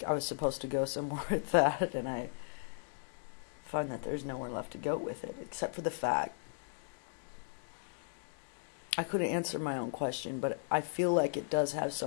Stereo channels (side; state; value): right; silent; digital silence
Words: I was supposed to go somewhere with that, and I find that there's nowhere left to go with it, except for the fact I couldn't answer my own question, but I feel like it does have